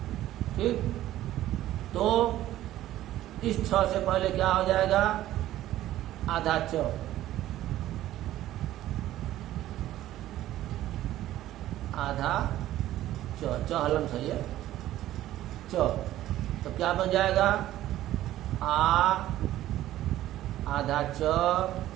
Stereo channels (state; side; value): quieter; left; 14.0 dB